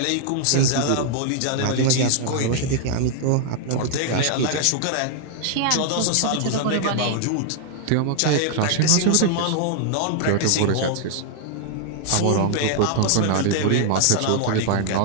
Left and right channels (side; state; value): both; different; correlation 0.00